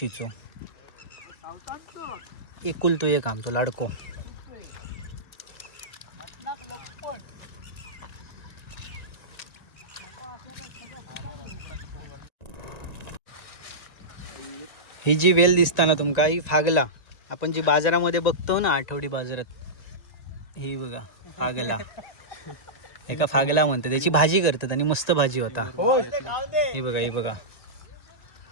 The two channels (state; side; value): late; right; 1.9 ms